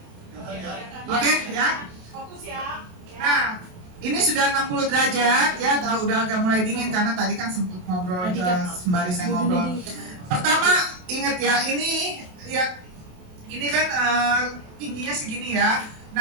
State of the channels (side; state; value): left; late; 28 ms